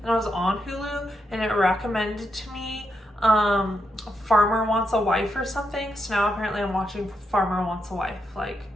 and I was on Hulu and it recommended to me Farmer Wants a Wife or something. So now apparently I'm watching Farmer Wants a Wife. Like,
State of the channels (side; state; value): both; normal; correlation 0.82